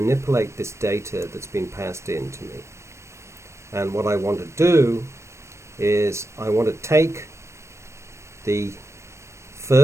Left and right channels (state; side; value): late; left; 0.13 ms